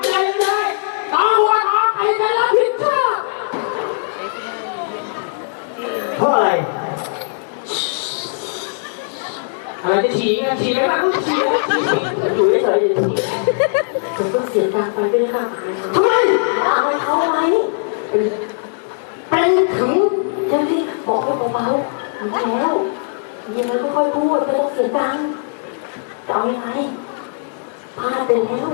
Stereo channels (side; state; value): right; silent; 61 dB below the other